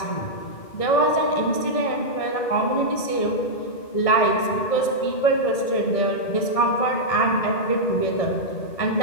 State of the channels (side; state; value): right; late; 1.7 ms